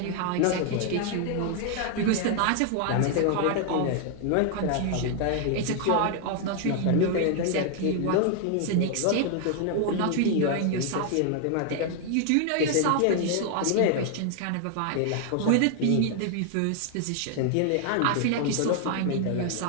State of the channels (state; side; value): different; both; correlation 0.00